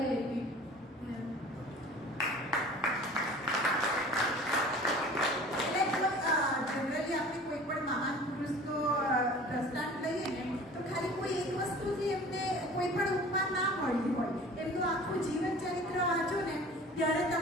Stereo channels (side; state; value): both; normal; correlation 0.44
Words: આપી. જનરલી આપણે કોઈ પણ મહાન પુરુષનો દ્રષ્ટાંત લઈએ ને તો ખાલી કોઈ એક વસ્તુથી એમને કોઈ પણ ઉપમા ના મળી હોય. એમનું આખું જીવન ચરિત્ર વાંચો ને ત્યારે